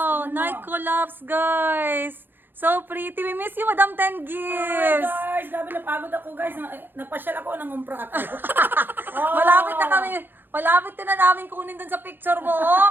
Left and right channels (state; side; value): late; left; 0.097 ms